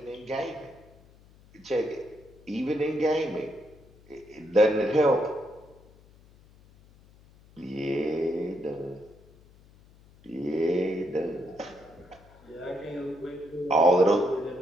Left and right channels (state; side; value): noise; left; hum, 26 dB below the sound